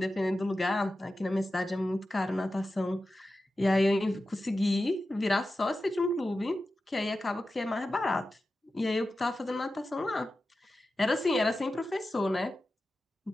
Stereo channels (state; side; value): normal; both; correlation 0.93